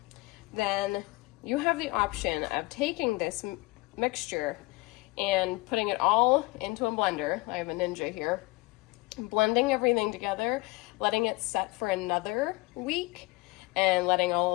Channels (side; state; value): right; quieter; 23.9 dB